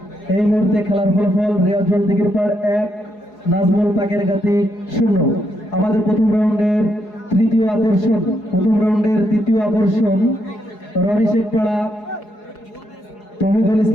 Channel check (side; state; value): right; late; 4.8 ms